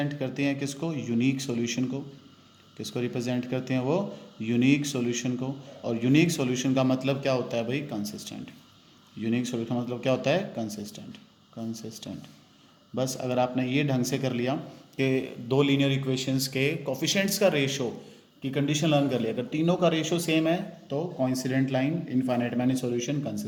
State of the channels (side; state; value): both; identical; correlation 1.00